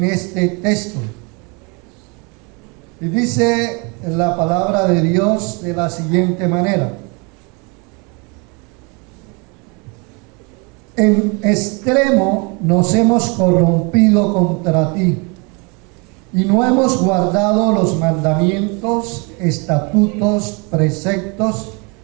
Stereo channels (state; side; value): quieter; left; 31.0 dB